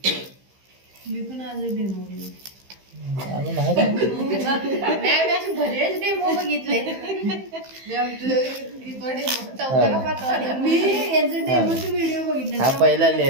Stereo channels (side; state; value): left; late; 15 ms